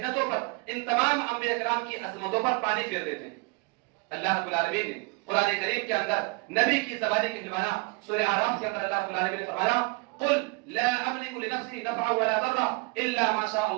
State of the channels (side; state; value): left; quieter; 28.6 dB